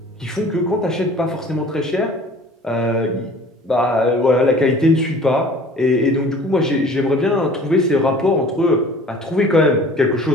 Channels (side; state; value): both; normal; correlation 0.47